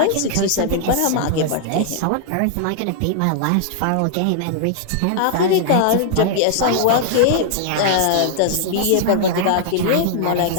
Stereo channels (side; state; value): both; different; correlation -0.01